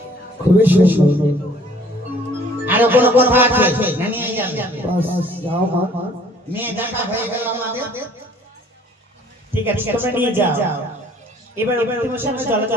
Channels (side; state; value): both; normal; correlation 0.56